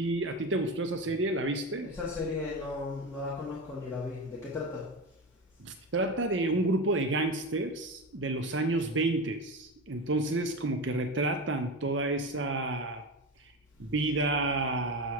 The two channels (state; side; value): normal; both; correlation 0.22